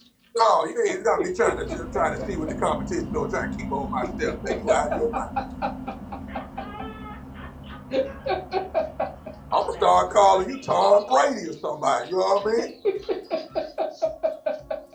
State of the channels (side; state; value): both; identical; correlation 1.00